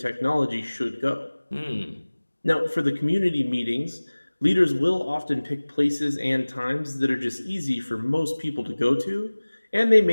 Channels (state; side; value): inverted; both; correlation -1.00